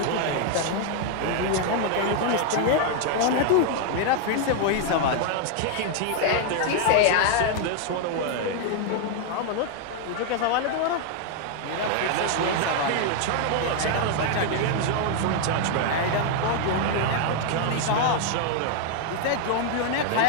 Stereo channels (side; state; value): both; different; correlation 0.00